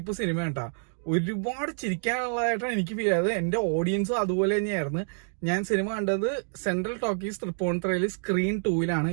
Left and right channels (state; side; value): silent; left; digital silence